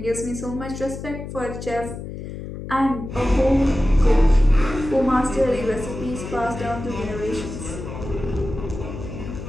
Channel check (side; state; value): left; noise; hum, 9 dB below the sound